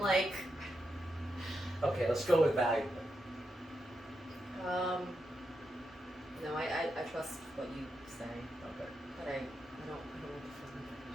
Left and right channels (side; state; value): both; normal; correlation 0.85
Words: like. Okay, let's go with valuable. No, I trust what you say, Okay. but I don't want